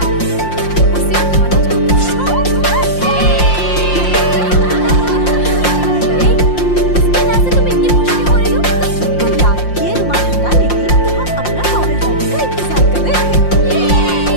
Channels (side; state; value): right; late; 5.7 ms